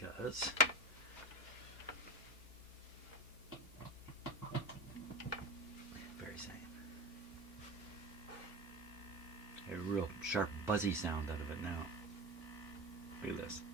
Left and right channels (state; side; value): normal; both; correlation 0.24